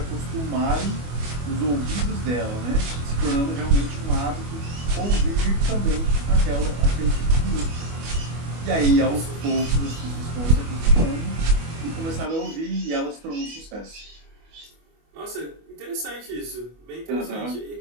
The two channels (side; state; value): left; late; 25 ms